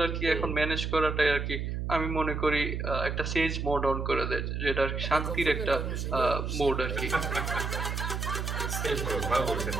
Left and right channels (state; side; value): noise; right; hum, 3 dB below the sound